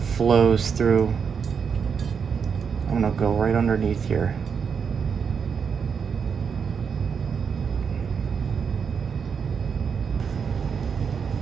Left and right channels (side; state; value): left; quieter; 6.4 dB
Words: flows through. I'm gonna go right underneath here.